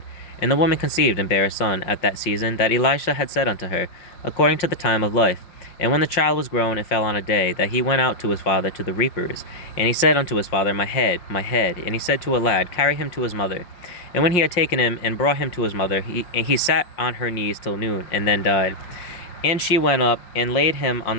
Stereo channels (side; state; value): right; late; 5.6 ms